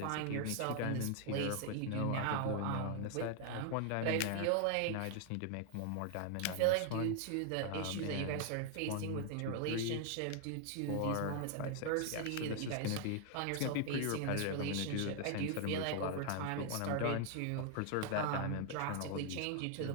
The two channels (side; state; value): both; different; correlation 0.00